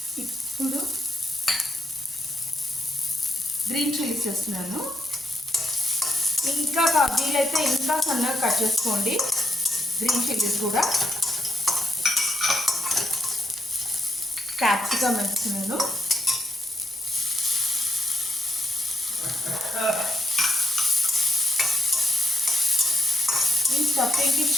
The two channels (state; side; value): normal; both; correlation 0.77